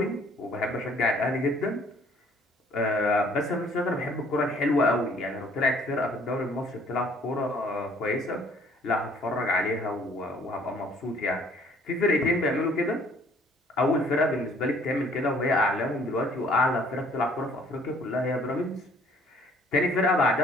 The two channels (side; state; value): both; normal; correlation 0.58